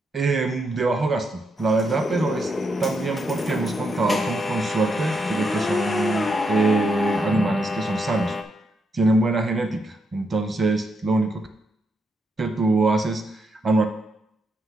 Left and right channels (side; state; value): both; normal; correlation 0.80